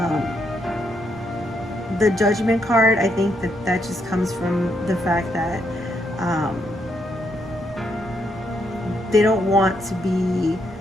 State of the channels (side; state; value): both; normal; correlation 0.77